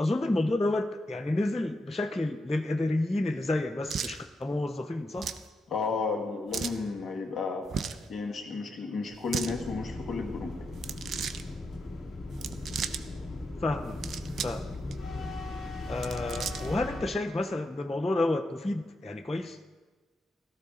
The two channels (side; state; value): both; normal; correlation 0.85